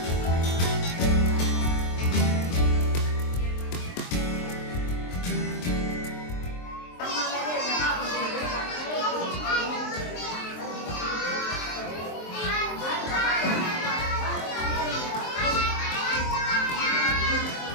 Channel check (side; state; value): right; late; 23 ms